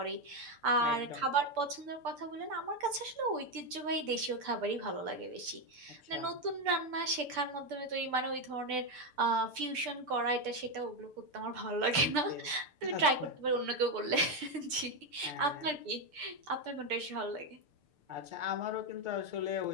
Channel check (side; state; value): left; late; 6.7 ms